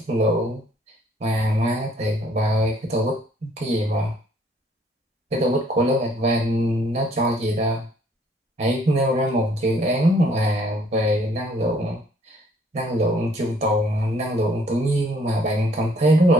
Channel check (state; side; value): normal; both; correlation 0.62